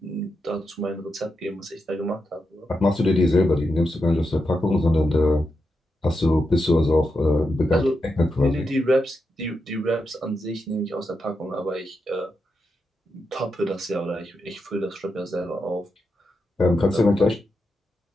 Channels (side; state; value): both; normal; correlation 0.86